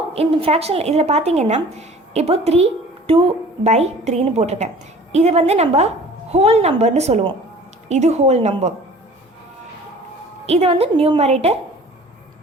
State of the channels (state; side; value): normal; both; correlation 0.46